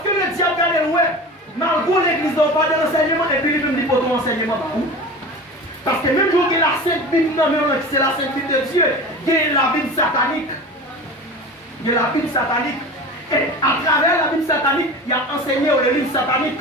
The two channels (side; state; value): both; normal; correlation 0.33